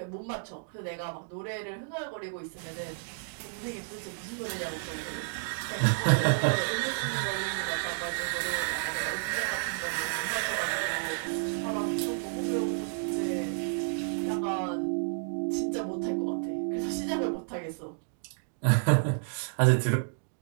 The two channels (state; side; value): silent; left; digital silence